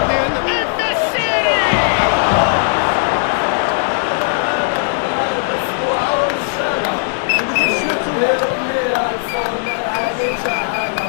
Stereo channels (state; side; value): silent; right; digital silence